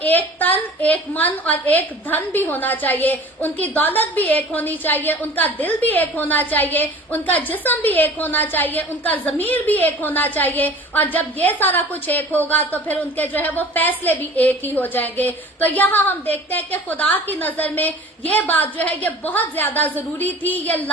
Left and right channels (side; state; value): both; normal; correlation 0.43